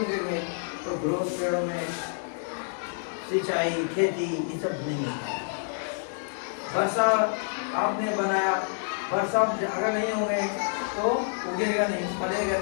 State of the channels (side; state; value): right; silent; digital silence